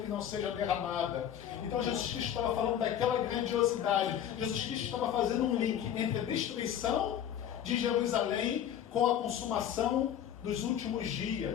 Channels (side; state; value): right; quieter; 10.0 dB